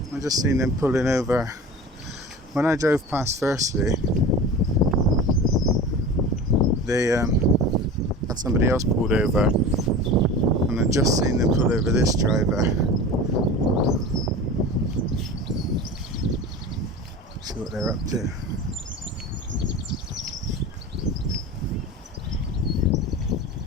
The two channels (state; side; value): normal; both; correlation 0.34